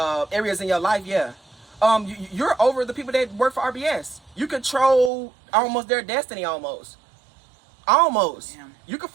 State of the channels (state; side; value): drops out; left; at 5.1 s